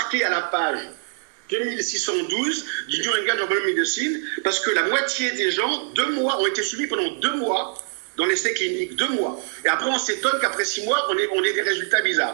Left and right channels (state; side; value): silent; left; 63 dB below the other